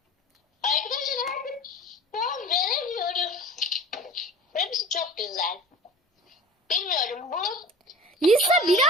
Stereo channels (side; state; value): both; normal; correlation 0.40